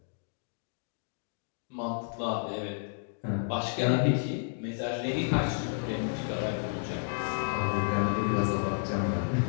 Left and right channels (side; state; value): right; silent; digital silence